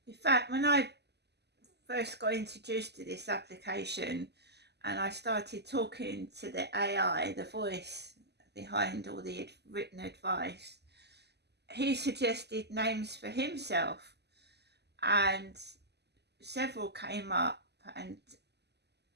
In fact, when I first got introduced to this application and I started talking to the AI, the voice behind all the written advice, he suggested names for himself, and several came up, and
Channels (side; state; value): left; late; 0.49 ms